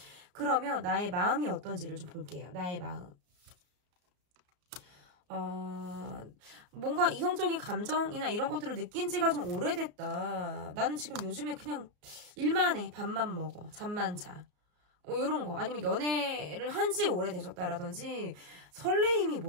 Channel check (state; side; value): late; left; 34 ms